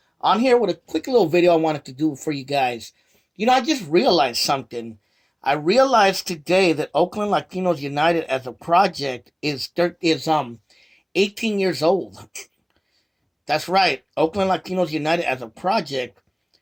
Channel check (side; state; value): both; identical; correlation 1.00